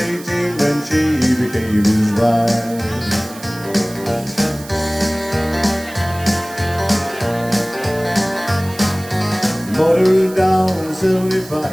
when she became his bride. Motored down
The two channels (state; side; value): noise; right; hiss, 17 dB below the sound